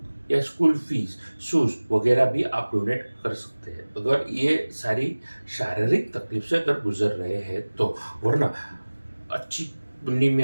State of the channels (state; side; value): inverted; both; correlation -1.00